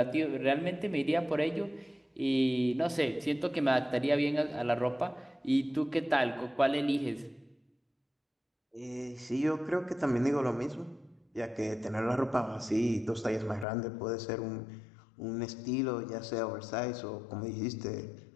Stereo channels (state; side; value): drops out; right; at 13.7 s